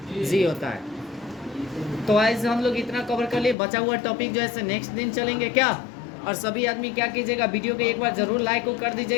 होता है। तो ऐसे हम लोग इतना कवर कर लिए। बचा हुआ टॉपिक जो है नेक्स्ट दिन चलेंगे क्या। और सभी आदमी क्या कीजिएगा, वीडियो को एक बार जरूर लाइक को कर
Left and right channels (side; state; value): right; drops out; at 3.6 s